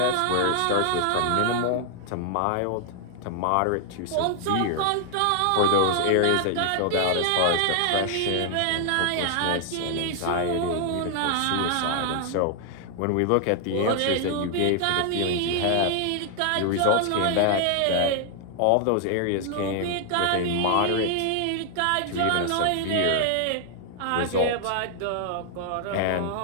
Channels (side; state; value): both; different; correlation 0.00